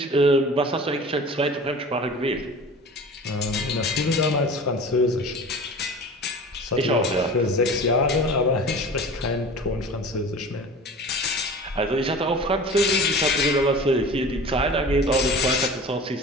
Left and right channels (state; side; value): normal; both; correlation 0.38